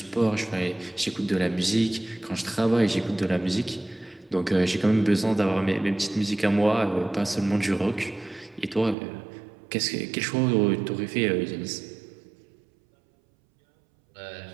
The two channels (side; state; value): left; drops out; at 9.0 s